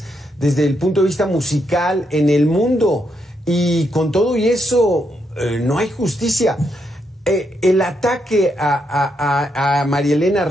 desde el punto de vista musical en el mundo, y con todo y eso no hay justicia. El ataque a María Elena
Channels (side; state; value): both; normal; correlation 0.79